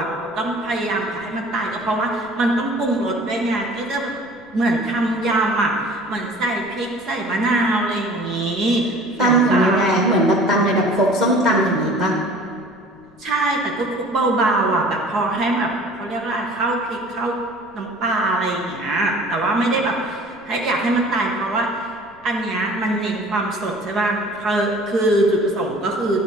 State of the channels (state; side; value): noise; left; rumble, 29 dB below the sound